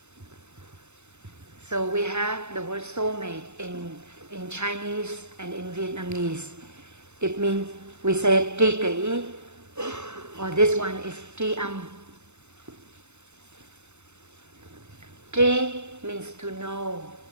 So we have the word soulmate in Chinese and in Vietnamese. It means, we say tri kỷ, or this one is tri âm. Tri means to know,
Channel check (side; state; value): left; late; 0.82 ms